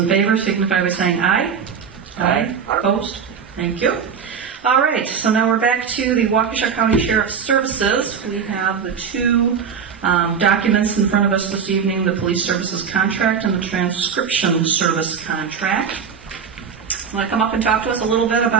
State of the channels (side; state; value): left; quieter; 6.8 dB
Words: favor signify by saying aye. Aye. Opposed? Thank you. All right, so now we're back to the Waukesha County Sheriff's Services. We have the two documents in front of us this evening, the police services contract and the transcription service contract. Want to come up and talk to us a little bit